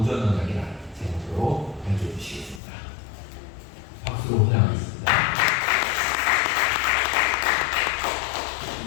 언약이라는 제목으로 연주해 주시겠습니다. 박수로 환영하겠습니다.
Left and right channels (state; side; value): drops out; right; at 2.6 s